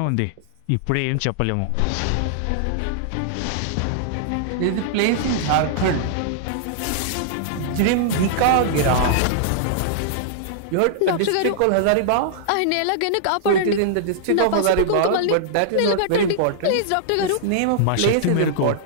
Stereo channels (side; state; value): both; different; correlation -0.01